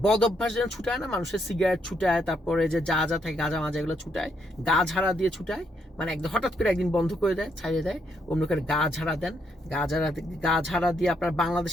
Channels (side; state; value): both; normal; correlation 0.75